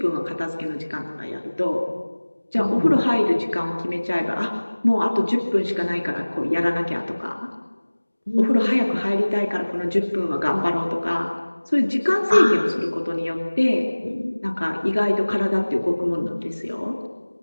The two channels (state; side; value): inverted; both; correlation -1.00